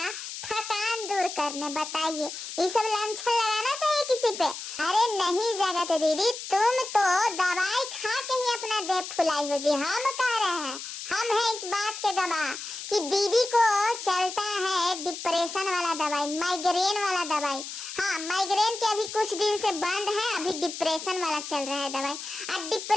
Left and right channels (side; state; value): left; noise; hiss, 9 dB below the sound